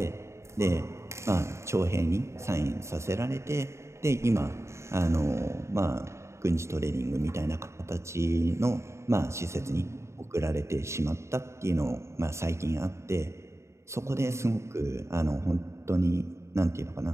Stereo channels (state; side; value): late; left; 0.14 ms